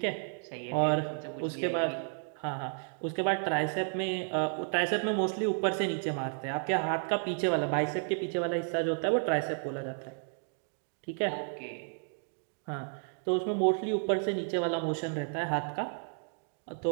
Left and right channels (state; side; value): silent; left; 56 dB below the other